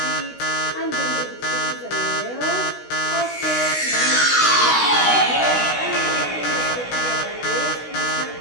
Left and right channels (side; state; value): right; late; 16 ms